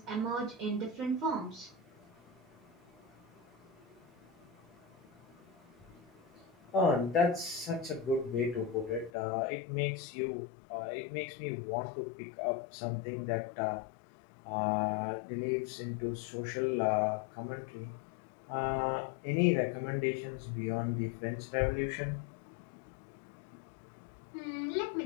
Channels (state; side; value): drops out; right; at 9.1 s